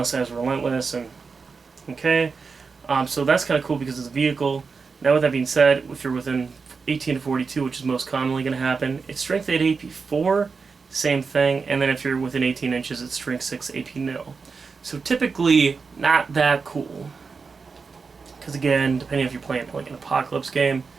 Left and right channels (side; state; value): left; quieter; 4.9 dB